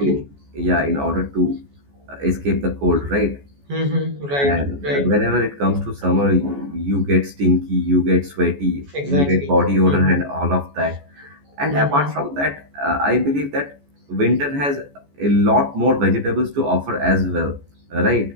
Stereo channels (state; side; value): late; left; 14 ms